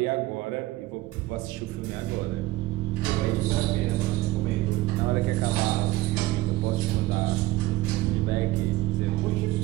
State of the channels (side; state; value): left; quieter; 17.7 dB